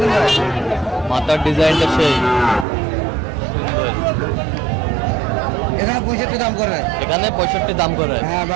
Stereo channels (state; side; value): drops out; left; at 2.7 s